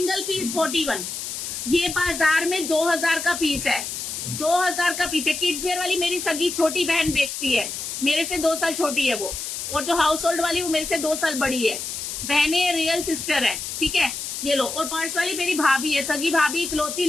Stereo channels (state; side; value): noise; left; hiss, 6 dB below the sound